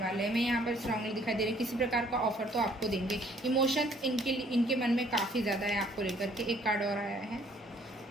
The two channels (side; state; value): both; normal; correlation 0.61